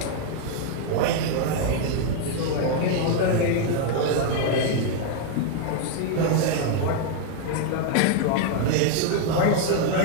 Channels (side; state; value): both; different; correlation 0.00